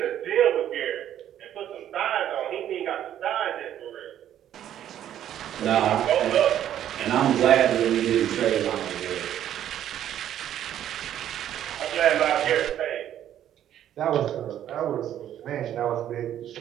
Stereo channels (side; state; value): left; quieter; 11.0 dB